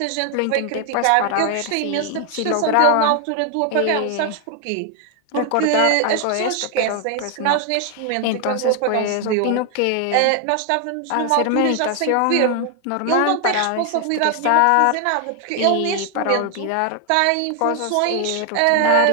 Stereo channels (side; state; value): both; different; correlation 0.00